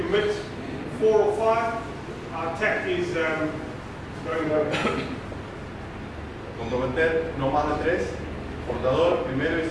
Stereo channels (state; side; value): identical; both; correlation 1.00